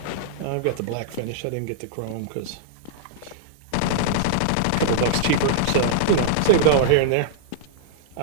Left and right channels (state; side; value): different; both; correlation -0.01